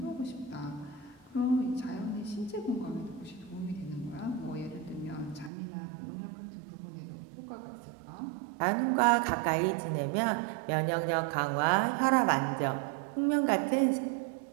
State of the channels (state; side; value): drops out; left; at 5.5 s